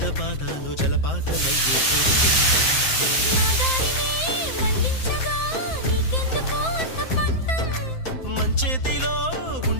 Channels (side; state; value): right; late; 7.7 ms